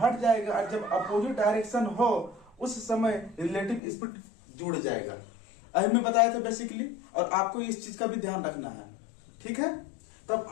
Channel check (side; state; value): right; drops out; at 3.8 s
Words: जाएगा, और जब अपोजिट डायरेक्शन हो उस समय रिलेटिव स्पीड जुड़ जाएगा। अभी मैं बताया था बेसिकली, और आपको इस चीज का भी ध्यान रखना है। ठीक है, तब